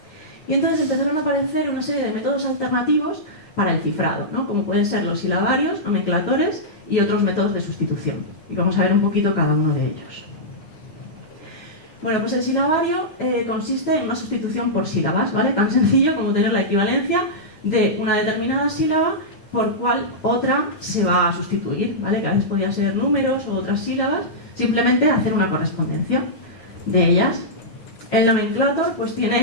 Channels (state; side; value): late; right; 9.4 ms